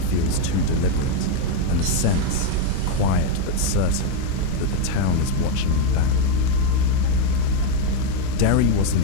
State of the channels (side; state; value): both; different; correlation 0.02